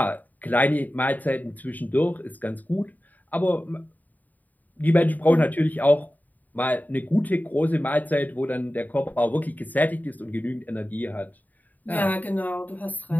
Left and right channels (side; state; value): right; late; 0.082 ms